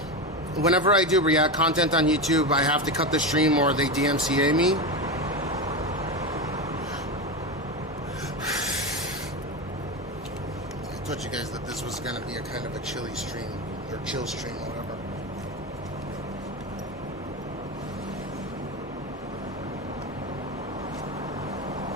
whenever I do React content on YouTube, I have to cut the stream or they DMCA me. I told you guys that this was going to be a kind of a chilly stream, or chill stream, or whatever.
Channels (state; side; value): normal; both; correlation 0.18